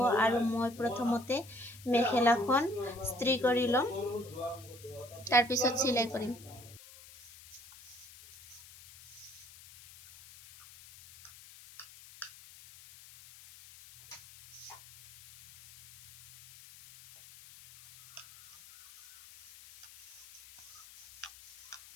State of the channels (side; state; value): left; noise; hiss, 20 dB below the sound